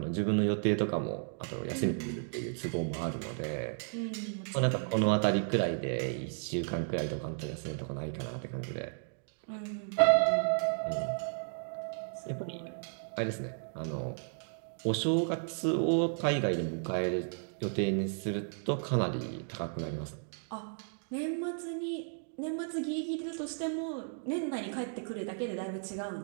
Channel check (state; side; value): silent; left; digital silence